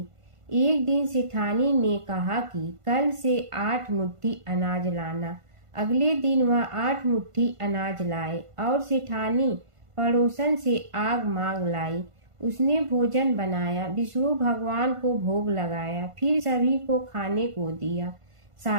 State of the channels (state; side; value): late; left; 1.5 ms